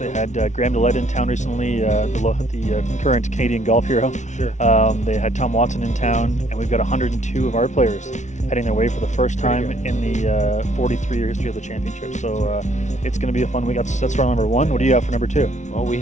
had Graham DeLette in town recently, the current Canadian golf hero. Sure. They had Tom Watson in town, and we've got 102 of our players heading their way for the first time in the 43-year history of the championship. So it's going to be a fun week. That's round number one. What do you have for number two? Well, we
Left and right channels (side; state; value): right; late; 0.35 ms